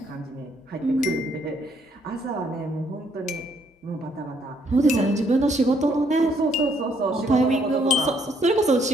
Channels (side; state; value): both; normal; correlation 0.69